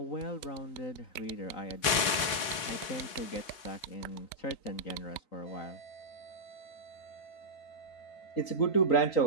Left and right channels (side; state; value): right; late; 3.9 ms